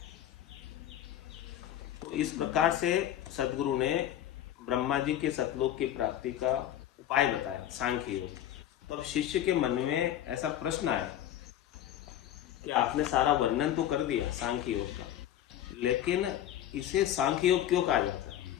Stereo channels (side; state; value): right; quieter; 11.5 dB